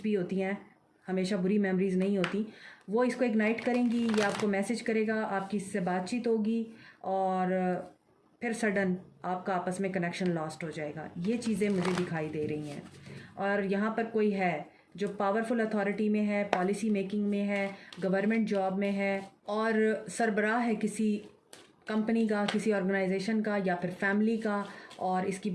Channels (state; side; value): identical; both; correlation 1.00